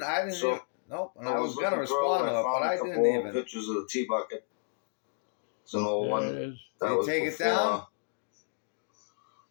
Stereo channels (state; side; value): silent; right; digital silence